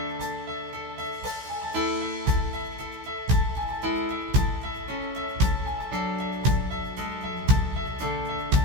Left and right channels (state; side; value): late; left; 16 ms